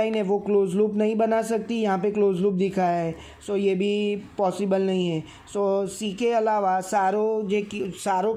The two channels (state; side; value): identical; both; correlation 1.00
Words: है वो क्लोज लूप नहीं बना सकती, यहाँ पे क्लोज लूप दिखाया है। सो ये भी पॉसिबल नहीं है। सो सी के अलावा सारो